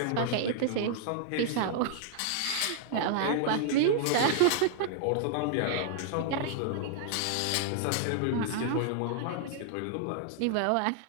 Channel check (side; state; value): both; different; correlation -0.01